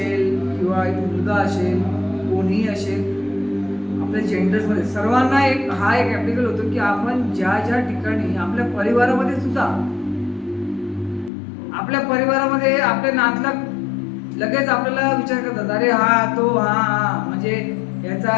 किंवा एक मुलगा असेल, कोणीही असेल, आपल्या जेंडर्समध्ये सर्वांना हा एक ॲप्लिकेबल होतो की आपण ज्या ठिकाणी आपल्या परिवारामध्ये सुद्धा, आपल्या परिवारामध्ये आपले नातलग लगेच आपल्याला विचार करतात, अरे हा म्हणजे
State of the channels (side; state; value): right; drops out; at 11.3 s